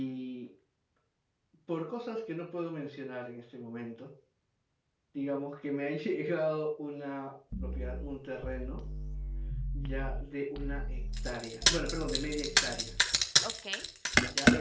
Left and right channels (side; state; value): both; identical; correlation 1.00